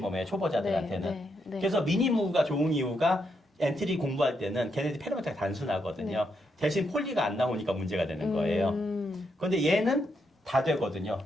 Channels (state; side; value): normal; both; correlation 0.80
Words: 초보자들한테는. 그래서 미니무가 좋은 이유가 엔트리 공부할 때는 걔네들이 페로메타가 단순하거든요. 대신 폴리가 안 나오니까 문제가 되는 거예요. 그런데 얘는 다 되거든요.